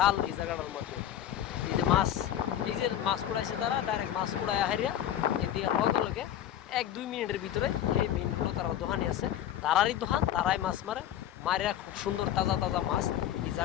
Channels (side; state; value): right; quieter; 11.1 dB